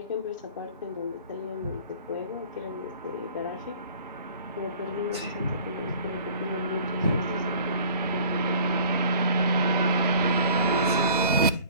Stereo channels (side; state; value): both; inverted; correlation -0.48